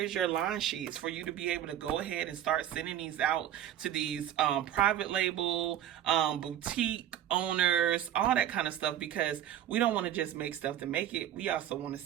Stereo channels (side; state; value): left; quieter; 11.1 dB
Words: your line sheets for you to be able to go ahead and start sending these out to these private label, boutique owners, all that kind of stuff, because we don't want to just make stuff to make it. We also want to